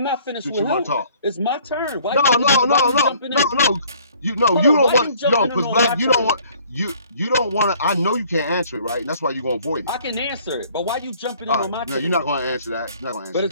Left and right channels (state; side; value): inverted; both; correlation -0.57